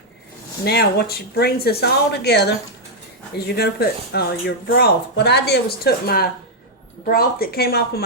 Now what brings this all together is you're going to put your broth. What I did was took my broth that came off of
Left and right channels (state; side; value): normal; both; correlation -0.03